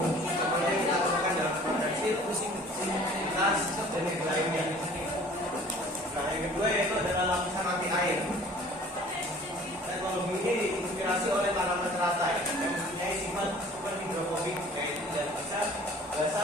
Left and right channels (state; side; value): normal; both; correlation 0.49